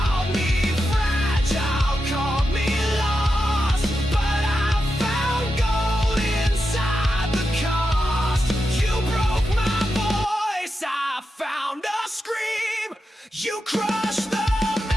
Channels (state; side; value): normal; both; correlation 0.88